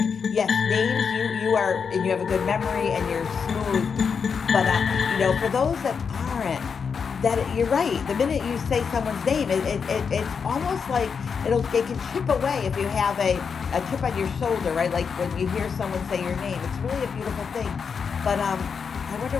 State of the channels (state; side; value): quieter; right; 6.1 dB